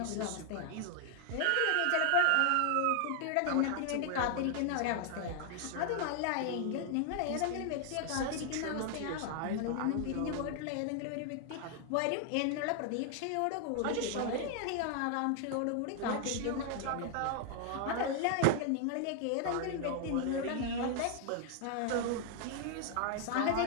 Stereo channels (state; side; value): different; both; correlation 0.00